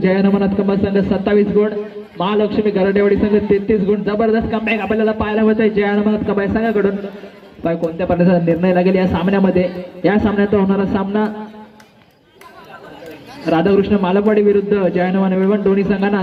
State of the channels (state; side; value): identical; both; correlation 1.00